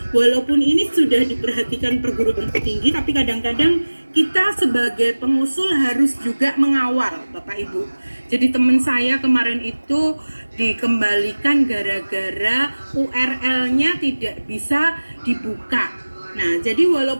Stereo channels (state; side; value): inverted; both; correlation -1.00